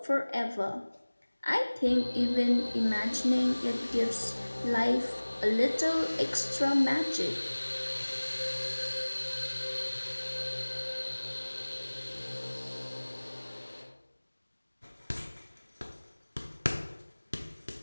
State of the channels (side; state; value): both; inverted; correlation -1.00